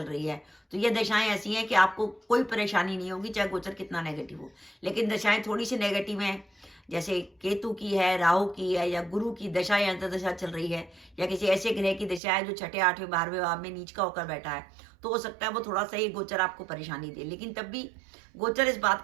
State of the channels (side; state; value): left; drops out; at 12.2 s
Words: रही है, तो ये दशाएं ऐसी हैं कि आपको कोई परेशानी नहीं होगी, चाहे गोचर कितना नेगेटिव हो। लेकिन दशाएं थोड़ी सी नेगेटिव हैं, जैसे केतु की है, राहु की है, या गुरु की दशा या अंतर्दशा चल रही है, या किसी ऐसे ग्रह की दशा है जो छठे, आठवें, 12वें भाव में नीच का होकर बैठा है, तो हो सकता है वो थोड़ा सा ये गोचर आपको परेशानी दे। लेकिन तब भी गोचर इस बात